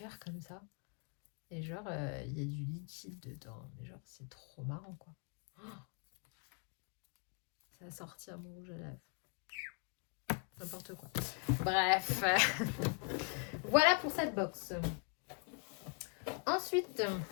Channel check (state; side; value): quieter; right; 37.3 dB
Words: comme ça. Et genre, il y a du liquide dedans. Mais genre, c'est trop marrant, quoi. Oh, ça a sorti à mon rouge à lèvres. n'importe quoi. Bref, voilà pour cette box. Ensuite,